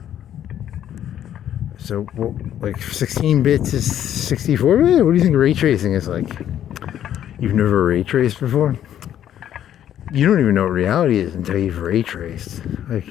So, well, like 16 bits is 64 bit? What do you think ray tracing is like? You've never ray traced before? You don't even know what reality is until you've ray traced.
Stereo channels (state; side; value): quieter; right; 10.7 dB